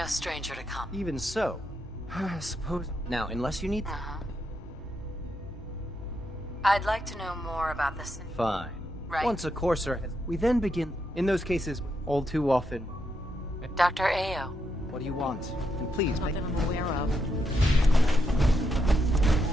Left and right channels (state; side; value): normal; both; correlation 0.81